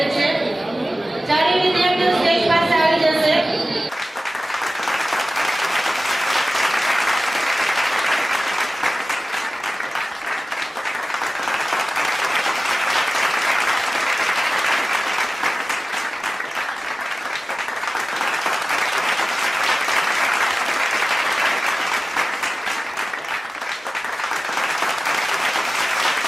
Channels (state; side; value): normal; both; correlation 0.96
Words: છે. ચારેય વિદ્યાર્થીઓ સ્ટેજ પાસે આવી જશે.